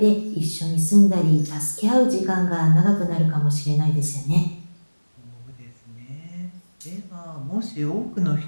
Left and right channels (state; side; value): inverted; both; correlation -1.00